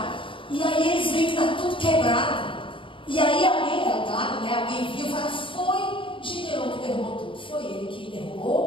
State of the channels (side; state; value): right; late; 0.25 ms